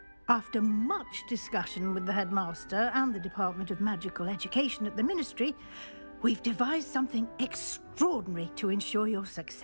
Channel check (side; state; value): both; inverted; correlation -1.00